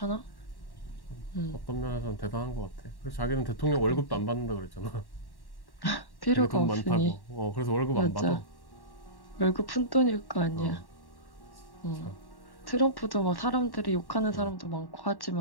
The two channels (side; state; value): right; late; 1.1 ms